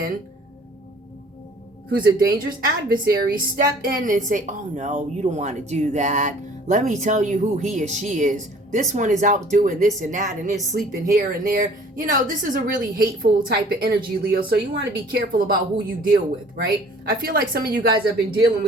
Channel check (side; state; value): both; normal; correlation 0.52